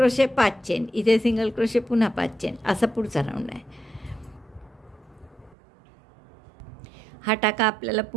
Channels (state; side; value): drops out; left; at 5.6 s